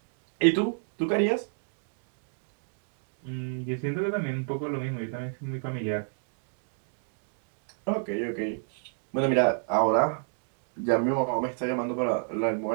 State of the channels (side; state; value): left; silent; 58 dB below the other